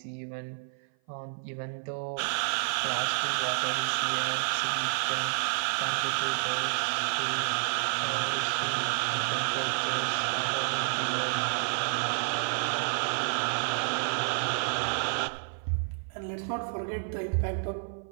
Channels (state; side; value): silent; left; 56 dB below the other